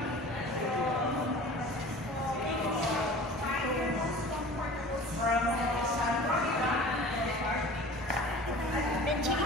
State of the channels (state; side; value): normal; both; correlation 0.41